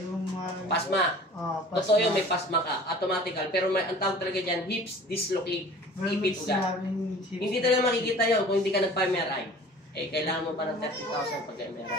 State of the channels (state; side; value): normal; both; correlation 0.45